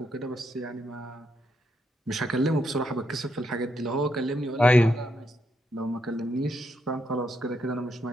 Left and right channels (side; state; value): both; normal; correlation 0.79